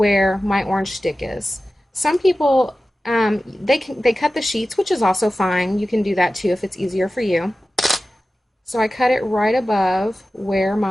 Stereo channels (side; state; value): both; normal; correlation 0.95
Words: my orange stick is. Some people, they cut the sheets, which is also fine. You can do that too if it's easier for you. So I cut it right above where